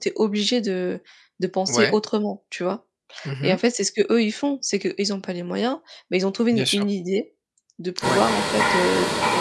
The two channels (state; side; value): identical; both; correlation 1.00